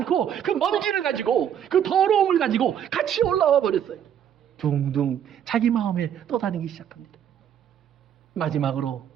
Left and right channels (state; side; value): quieter; left; 9.3 dB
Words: 그 먼지를 가지고 그 더러움을 가지고 같이 올라와 버렸어요. 둥둥 자기 마음에 떠다니기 시작합니다. 마지막으로